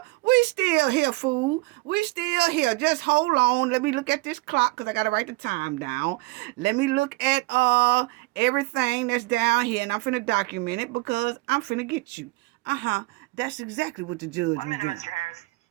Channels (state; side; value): quieter; left; 22.8 dB